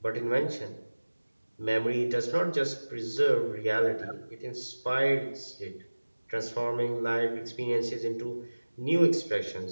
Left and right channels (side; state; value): both; inverted; correlation -1.00